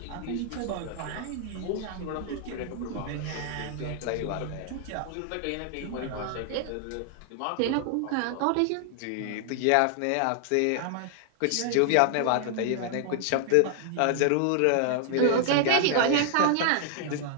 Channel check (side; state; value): both; different; correlation 0.00